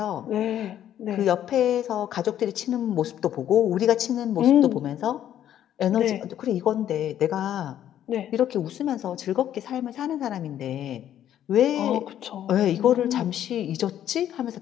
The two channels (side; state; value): right; quieter; 11.0 dB